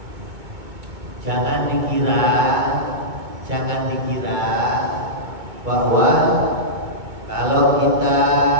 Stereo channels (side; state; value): left; late; 2.2 ms